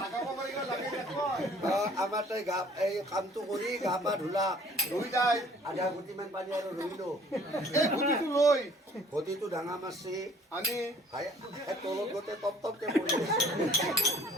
আমাৰ তাই গা এই কামটো কৰি গা পা ধুলা, লৈ তাই আধা গুটিমান পানী আৰু ৰহিলো। এই গুটিটো লৈ ঘটিটো ডাঙা মাছছে, আনি তলত গোটেই টপ টপকে পৰি আছে।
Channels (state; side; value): normal; both; correlation 0.55